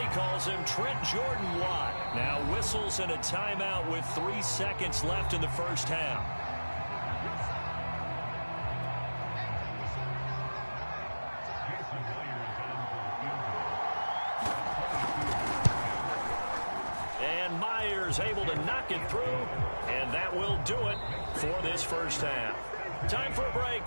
calls him, Trent Jordan Watt. Now whistles and a timeout with 3 seconds left in the first half. Able to knock it through, and that will do it for this first half. Time for a break.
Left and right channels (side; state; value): both; inverted; correlation -1.00